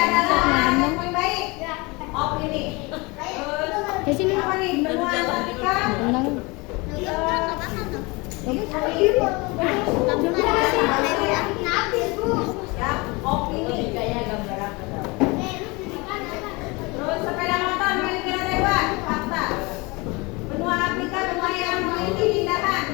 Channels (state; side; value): quieter; right; 25.8 dB